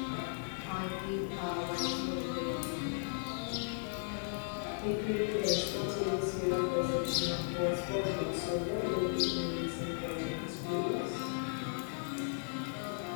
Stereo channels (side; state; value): right; silent; digital silence